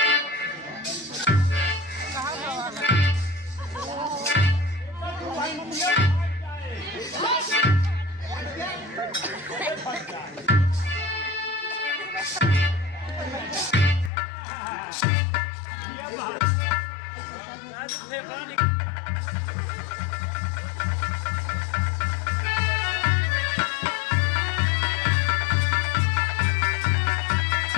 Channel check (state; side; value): drops out; right; at 14.1 s